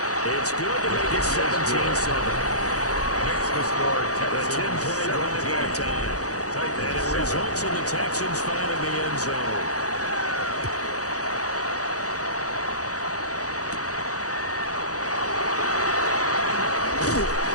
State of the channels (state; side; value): late; right; 0.66 ms